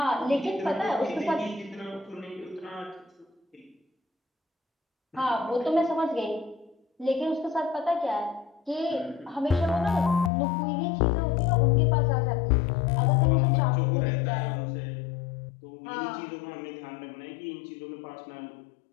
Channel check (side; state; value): right; drops out; at 10.3 s